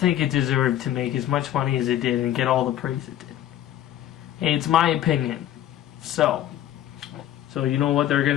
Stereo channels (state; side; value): quieter; right; 12.0 dB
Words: it deserved to make as much money as it did and get all the praise it did. It's my opinion. So you know what they're